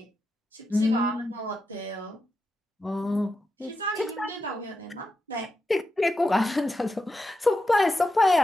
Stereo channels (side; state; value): both; normal; correlation 0.88